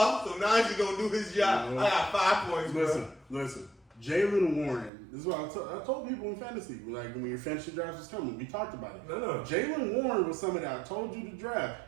so now you gonna do his job. I got 5 points. Listen. Jalen Warren. This is what I told people in fantasy. Like when your fantasy draft was coming, we talked about it. No. Jalen Warren was somebody I told you to draft.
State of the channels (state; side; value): drops out; left; at 4.9 s